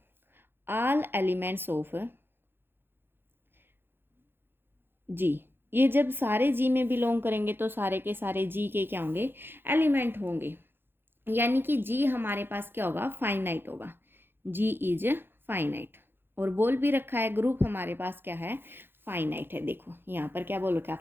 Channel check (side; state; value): left; late; 0.10 ms